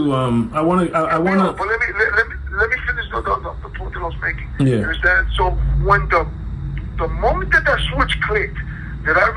But let me finish the point that I was making. Yeah. You understand? So when the moment that switch clicked, that I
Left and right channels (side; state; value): both; identical; correlation 1.00